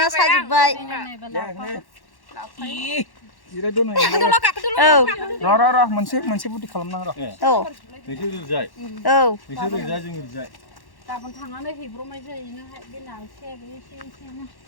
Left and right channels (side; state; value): right; late; 1.1 ms